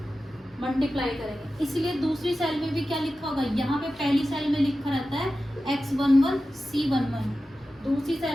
मल्टीप्लाई करेंगे। इसलिए दूसरी सेल में भी क्या लिखा होगा, यहाँ पे पहली सेल में लिखा रहता है X11 C11, दूसरी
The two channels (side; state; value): both; normal; correlation 0.93